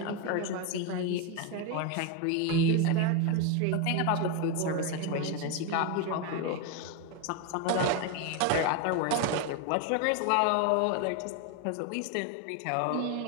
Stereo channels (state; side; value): different; both; correlation 0.02